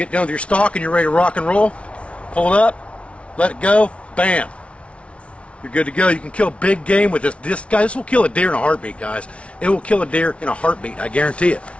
done with your stalk and you're ready to rock and roll, pull it up, let it go, bam. You're good to go. You can kill big game with this. This will kill a deer in a heartbeat, guys. It will kill a deer in a heartbeat, I guarantee it.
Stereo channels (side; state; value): right; late; 0.061 ms